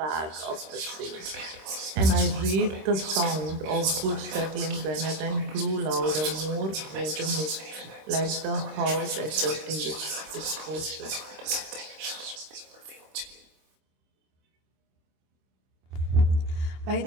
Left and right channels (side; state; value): left; late; 26 ms